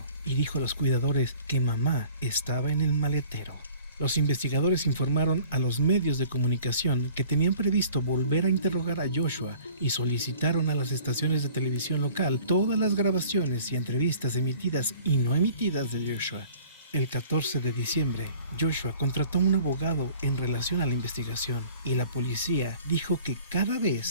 y dijo a los cuidadores que mamá estaba en el maletero. Los investigadores informaron a los medios de comunicación que tenían previsto volver a interrogar a Joshua y solicitaron a las estaciones de televisión local todas las grabaciones y entrevistas emitidas y no emitidas de Joshua. El 14 de diciembre, Joshua contrató a un abogado en relación a la investigación y la policía dijo que cada vez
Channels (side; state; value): both; inverted; correlation -0.50